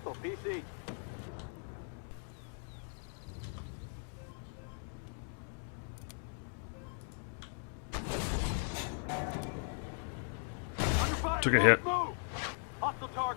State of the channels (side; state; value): right; silent; 52 dB below the other